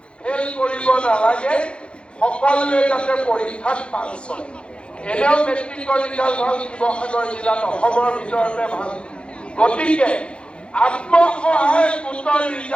ফেল কৰিব নালাগে সকলোৱে যাতে পৰীক্ষাত পাছ হয় এনেও মেট্ৰিকৰ ৰিজাল্ট ভাল শিৱসাগৰ জিলাত অসমৰ ভিতৰতে ভাল গতিকে আত্মসহায়ক গোটৰ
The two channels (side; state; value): right; late; 0.057 ms